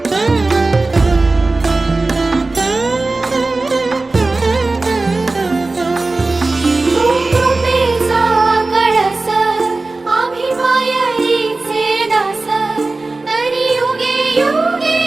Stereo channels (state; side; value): quieter; left; 3.3 dB